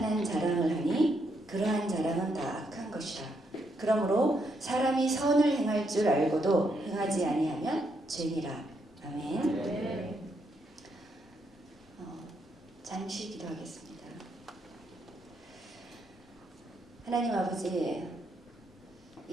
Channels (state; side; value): normal; both; correlation 0.77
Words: 자랑을 하니 그러한 자랑은 다 악한 것이라. 그러므로 사람이 선을 행할 줄 알고도 행하지 아니하면 죄니라. 아멘. 네. 잠시 기도하겠습니다. 하나님 아버지,